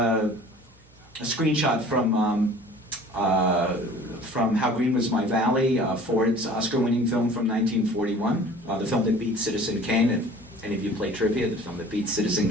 screenshot from How Green Was My Valley, Ford's Oscar-winning film from 1941, the film that beat Citizen Kane. If any of you play trivia, the film that beat Citizen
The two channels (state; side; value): normal; both; correlation 0.47